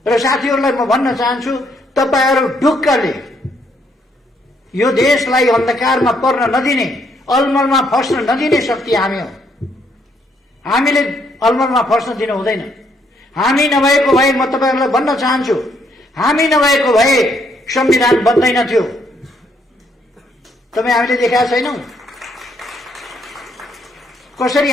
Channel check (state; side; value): normal; both; correlation 0.71